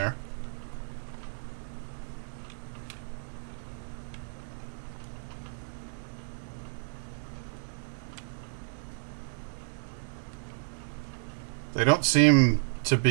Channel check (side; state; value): left; silent; digital silence